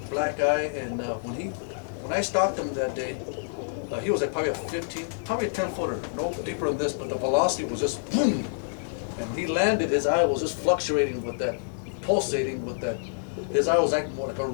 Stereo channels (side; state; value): right; silent; 60 dB below the other